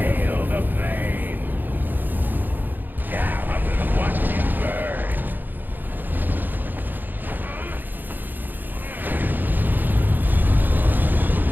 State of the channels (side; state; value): left; late; 0.089 ms